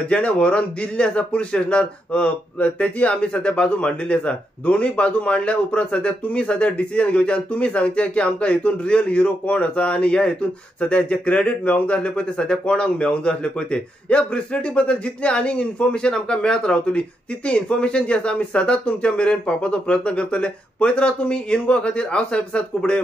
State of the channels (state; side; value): normal; both; correlation 0.82